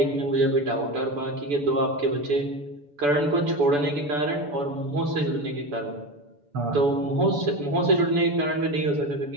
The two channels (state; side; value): late; left; 6.9 ms